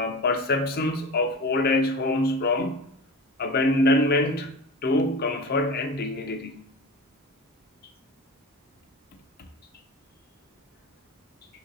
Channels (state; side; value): normal; both; correlation 0.31